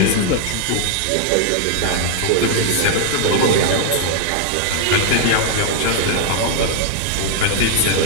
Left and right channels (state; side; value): different; both; correlation 0.00